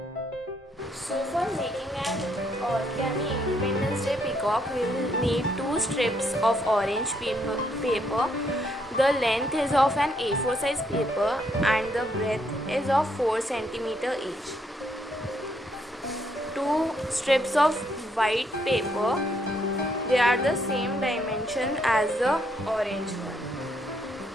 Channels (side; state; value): both; normal; correlation 0.73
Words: So for making an origami Independence Day peacock, we will need 2 strips of orange paper. The length is of an A4 size paper and the breadth is of 4 cm each. 2 strips of white paper, they are the same dimension as the orange one,